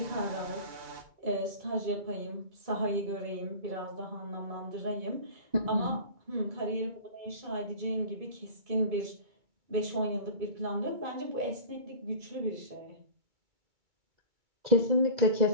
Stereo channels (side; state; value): left; late; 2.2 ms